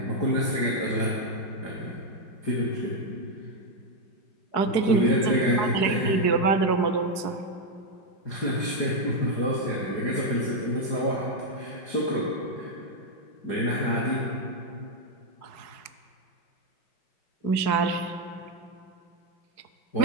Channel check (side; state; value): right; late; 4.8 ms